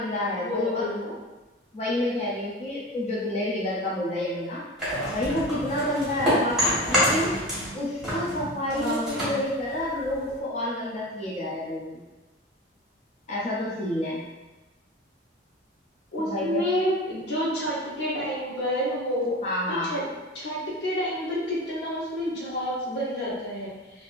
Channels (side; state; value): both; normal; correlation 0.30